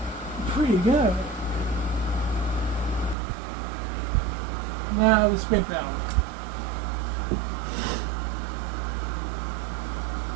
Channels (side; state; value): left; drops out; at 3.2 s